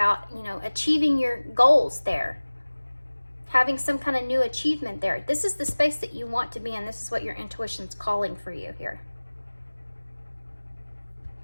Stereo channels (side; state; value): both; inverted; correlation -1.00